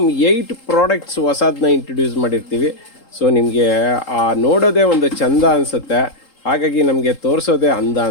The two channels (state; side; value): late; right; 3.8 ms